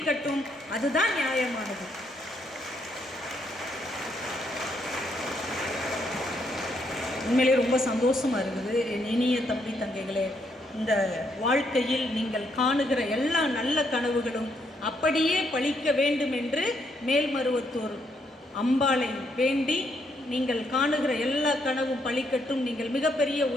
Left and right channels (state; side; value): normal; both; correlation 0.75